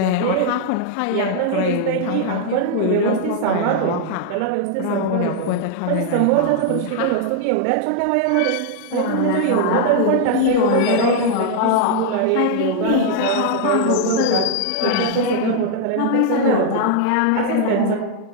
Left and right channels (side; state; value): both; different; correlation 0.00